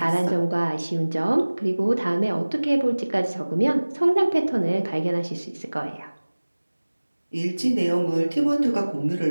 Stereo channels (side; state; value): both; inverted; correlation -1.00